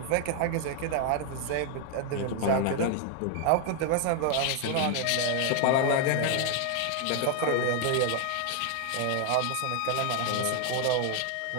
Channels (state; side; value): different; both; correlation 0.00